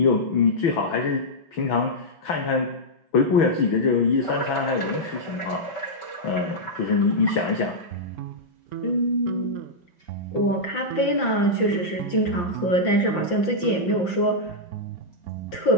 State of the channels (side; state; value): right; late; 5.8 ms